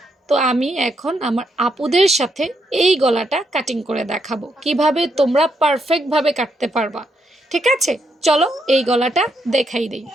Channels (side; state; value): both; normal; correlation 0.78